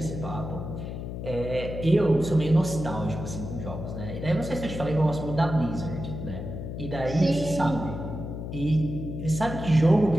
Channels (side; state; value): left; noise; hum, 7 dB below the sound